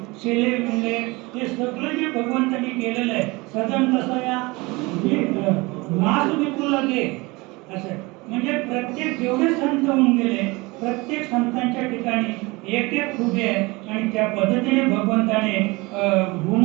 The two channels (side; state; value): left; quieter; 24.0 dB